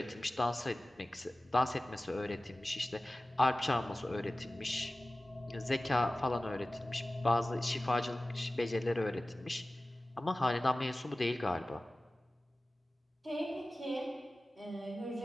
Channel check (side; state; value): both; normal; correlation 0.97